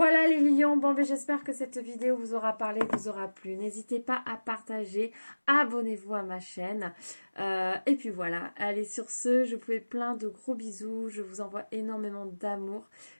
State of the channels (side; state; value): both; inverted; correlation -1.00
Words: les lions, bon ben j'espère que cette vidéo vous aura parlé, vous aura plu. N'hésitez pas à partager, abonnez-vous à ma chaîne. Et puis voilà, allez sur ce, je vous fais plein de gros bisous, je vous envoie énormément d'amour.